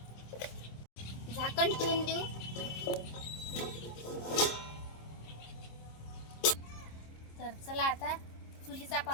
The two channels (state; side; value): late; right; 26 ms